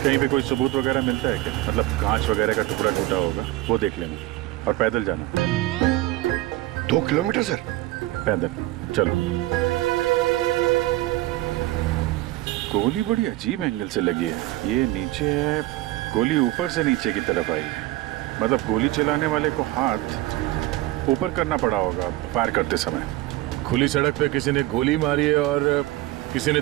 पे कोई सबूत वगैरह मिलता है क्या? मतलब कांच वगैरह का टुकड़ा टूटा होगा, वो देख लेना, और पैदल जाना। 2 किलोमीटर सर? पैदल चलो। गोली बड़ी अजीब एंगल से लगी है। ये नीचे है, गोली ऊपर से नीचे की तरफ आई है। मतलब गोली चलाने वाले को हाथ ऊपर करना पड़ा होगा फायर करते समय। खुली सड़क पे किसी ने गोली मारी है और किसी ने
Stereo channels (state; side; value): quieter; left; 17.4 dB